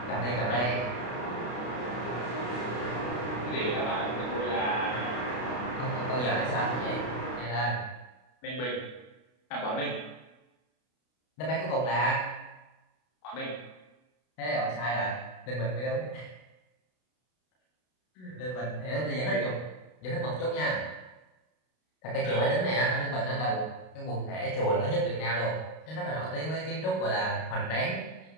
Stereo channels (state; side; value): late; right; 32 ms